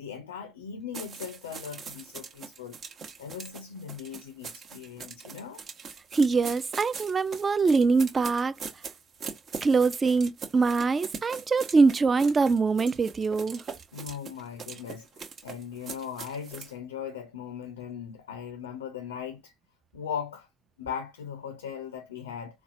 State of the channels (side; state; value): left; quieter; 3.4 dB